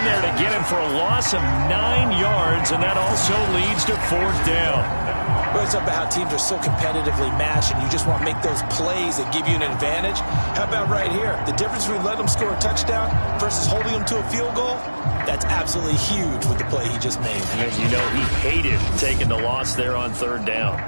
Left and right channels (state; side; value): inverted; both; correlation -1.00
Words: there to get him for a loss of 9 yards, and that also leads to fourth down. Well, it's about how teams are so competitively matched, and you just want to make those plays that give you an advantage. How about right here? The difference between letting them score a touchdown versus holding them to a field goal, that's absolutely huge with the play he just made. And you know he hated taking the loss there on third down.